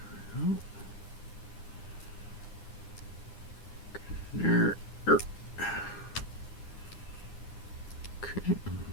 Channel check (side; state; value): right; late; 9.8 ms